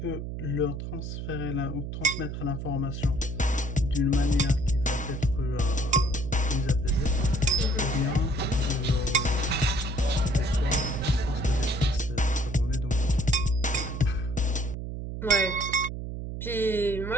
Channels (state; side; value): noise; right; hum, 6 dB below the sound